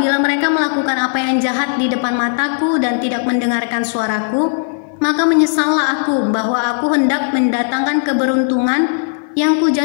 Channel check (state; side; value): silent; right; 55 dB below the other